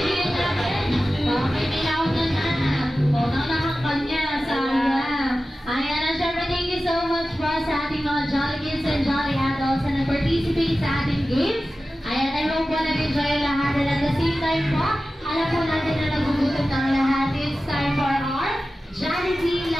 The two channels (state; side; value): normal; both; correlation 0.95